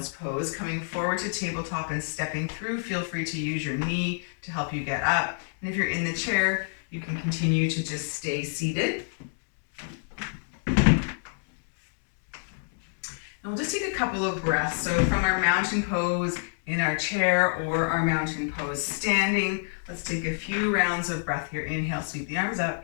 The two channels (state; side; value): silent; right; digital silence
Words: pose, coming forward to tabletop and stepping through, feel free to use your knee to help you get up. And if you're in the chair, you can continue to just stay seated. And we'll just take a couple of breaths. So from our mountain pose in our chair or our mountain pose standing, let's take a few rounds of breath here. Inhale, sweep the arms up.